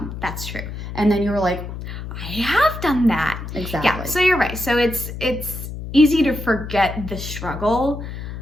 That's true. And then you were like, I have done that. Exactly. Yeah, so you're right. So it's easy to forget the struggle,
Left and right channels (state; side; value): noise; left; hum, 8 dB below the sound